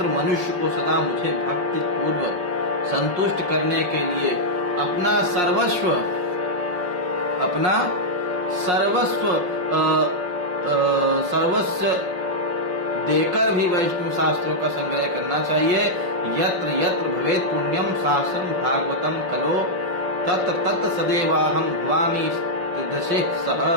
मनुष्य को सदा मुझे भक्ति पूर्वक संतुष्ट करने के लिए अपना सर्वस्व देकर भी वैष्णव शास्त्रों का संग्रह करना चाहिए। यत्र यत्र भवेत् पुण्यम शास्त्रम भागवतम कलो तत्र तत्र सदैवाहम भवानी दशे सह।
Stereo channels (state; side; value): late; left; 5.6 ms